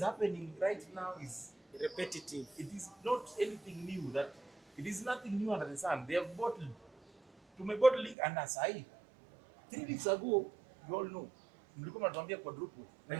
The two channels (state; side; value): drops out; left; at 8.2 s